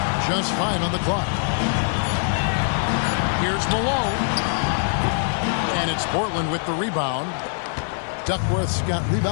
Just 5 on the clock. Here's Malone. And it's Portland with the rebound. Duckworth's got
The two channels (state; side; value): silent; right; digital silence